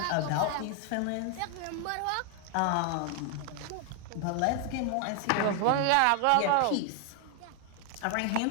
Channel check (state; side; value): different; both; correlation 0.00